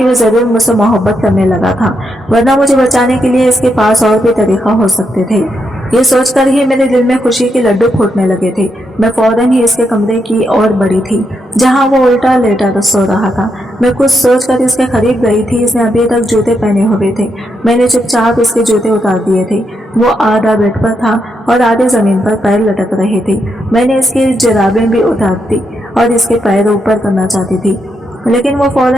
वो जरूर मुझसे मोहब्बत करने लगा था, वरना मुझे बचाने के लिए इसके पास और भी तरीका हो सकते थे। ये सोचकर ही मेरे दिल में खुशी के लड्डू फूटने लगे थे। मैं फौरन ही इसके कमरे की ओर बढ़ी थी, जहां वो उल्टा लेटा सो रहा था। मैं कुछ सोचकर इसके करीब गई थी। इसने अभी तक जूते पहने हुए थे। मैंने चुपचाप इसके जूते उतार दिए थे। वो आधा बेड पर था और आधे जमीन पर पैर लटक रहे थे। मैंने इसकी जुराबें भी उतार दी और इसके पैर ऊपर करना चाहती थी, लेकिन वो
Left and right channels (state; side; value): normal; both; correlation 0.81